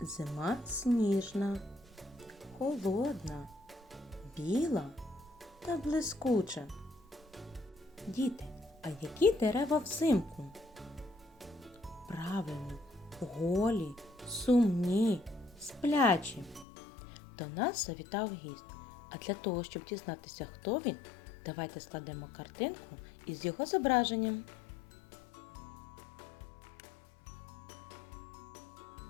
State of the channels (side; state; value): right; drops out; at 16.7 s